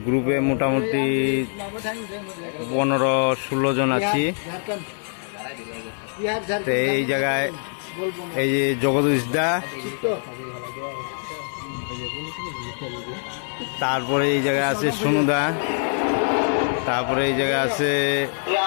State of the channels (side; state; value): right; silent; 63 dB below the other